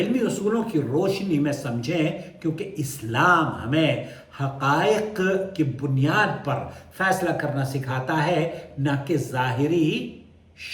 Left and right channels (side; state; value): both; identical; correlation 1.00